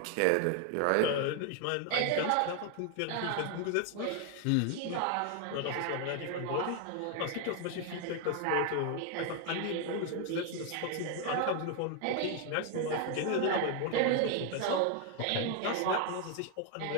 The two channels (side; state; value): both; different; correlation 0.01